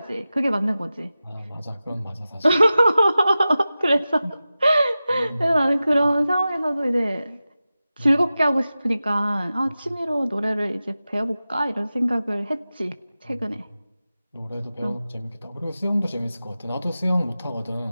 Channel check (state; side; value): inverted; both; correlation -0.94